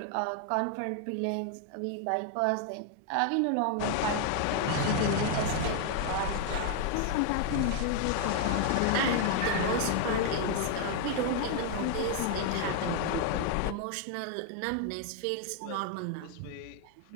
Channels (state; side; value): different; both; correlation 0.00